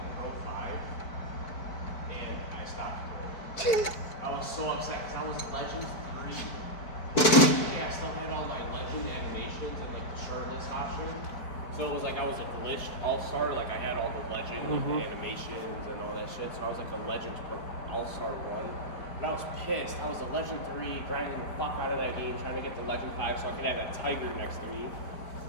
Pro 5, and I stopped. I was so upset because I was Legend 3. Yeah, I still had all my Legend animations and like the shirtless option. So it was like I was a glitched all-star, like I had all the Legend, like the animations and all that shit. So I was like the Legends all-star 1. And I was pissed. I was a Legend 3, grinding the fuck out of that game, trying to get the Legend 5 so I could have that tiger next to me.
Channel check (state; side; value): late; right; 4.5 ms